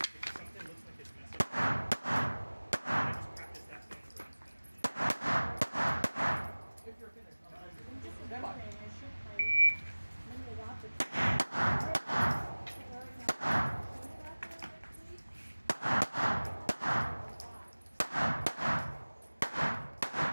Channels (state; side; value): inverted; both; correlation -1.00